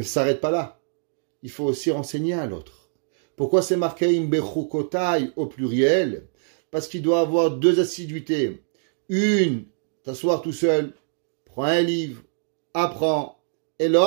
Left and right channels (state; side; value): silent; left; digital silence